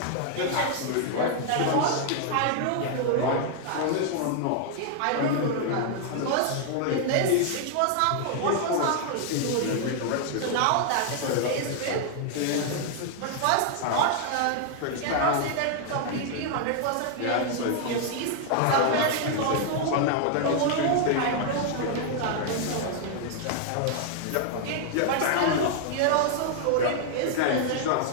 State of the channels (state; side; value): different; both; correlation 0.00